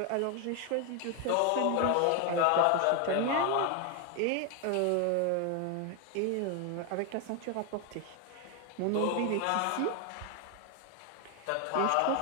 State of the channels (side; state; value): both; different; correlation 0.01